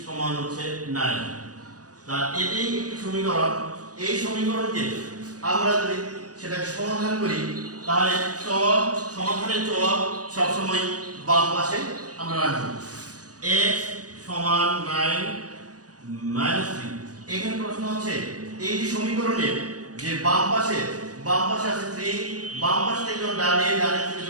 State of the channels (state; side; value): late; left; 0.68 ms